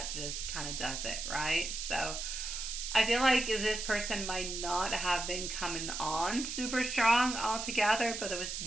just kind of does it, right? So I feel like this person might not have been coming on super strong altogether, but there was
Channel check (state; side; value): noise; right; hiss, 5 dB below the sound